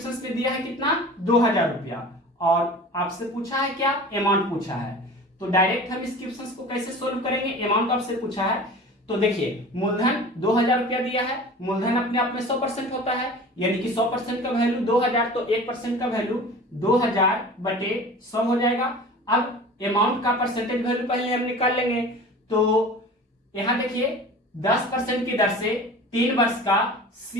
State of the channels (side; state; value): both; normal; correlation 0.39